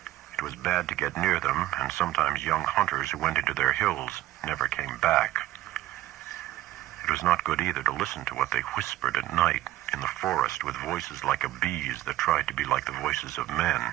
It was bad to get near them, and sometimes young hunters who went into their hills never came back. It was not good either to listen to what they whispered at night in the forest with voices like a bee's that tried to be like the voices of men.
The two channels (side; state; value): left; quieter; 14.9 dB